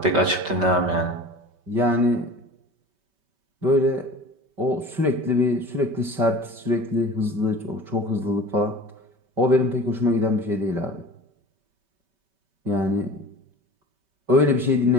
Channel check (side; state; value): left; late; 5.2 ms